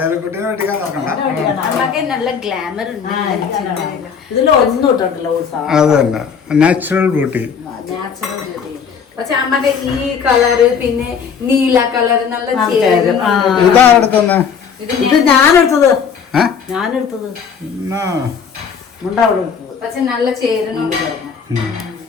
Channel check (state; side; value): quieter; right; 6.7 dB